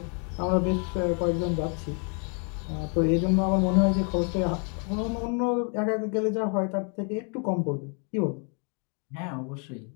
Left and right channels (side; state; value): right; quieter; 37.9 dB